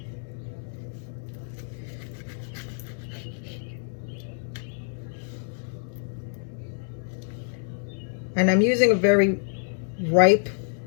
And I'm using a very ripe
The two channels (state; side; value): silent; right; digital silence